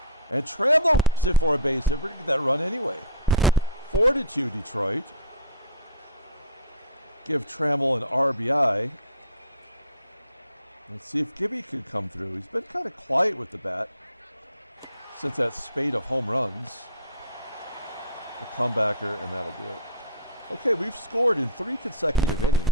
And Trammell rips it for a base hit. We're going to get that run anyway. 4-2 Detroit. Give Trammell an RBI. Let's see if Gibby can come through. He's been kind of quiet with the bat since that spate of home runs. A comebacker, and that'll do it. Okay, we've scored in 3 consecutive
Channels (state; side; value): inverted; both; correlation -0.39